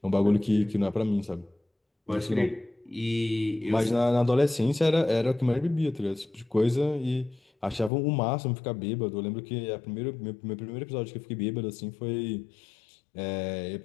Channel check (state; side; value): drops out; right; at 7.9 s